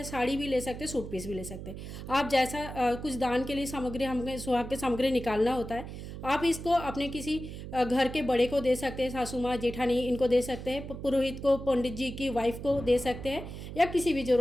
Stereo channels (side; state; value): right; noise; hum, 10 dB below the sound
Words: साड़ी भी ले सकते हैं, सूट पीस भी ले सकते हैं। आप जैसा कुछ दान के लिए सामग्री, हमें सुहाग की सामग्री निकालना होता है, आप इसको अपने किसी घर के बड़े को दे सकते हैं, सासू माँ, जेठानी, इनको दे सकते हैं, पुरोहित को, पंडित जी की वाइफ को दे सकते हैं, या किसी भी